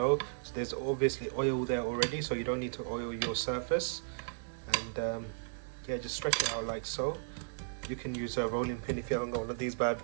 So there's obviously oil there already, so you don't need to oil your surface. And yeah, just stretch it out like so. You can use a rolling pin if you haven't got one of these bad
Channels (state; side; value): silent; left; 54 dB below the other